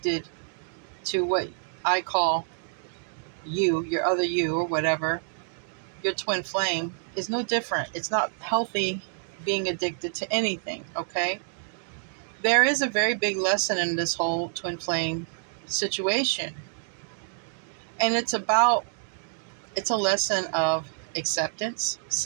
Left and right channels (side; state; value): left; silent; digital silence